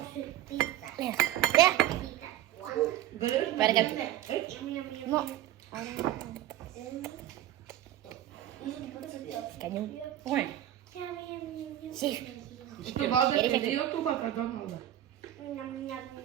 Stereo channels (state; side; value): quieter; left; 12.7 dB